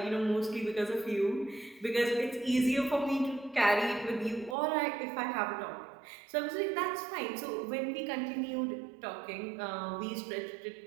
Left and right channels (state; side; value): drops out; left; at 4.5 s